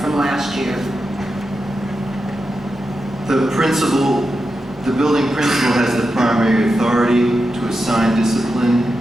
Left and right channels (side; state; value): both; normal; correlation 0.89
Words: last year? The building principal has the primary authority to assign discipline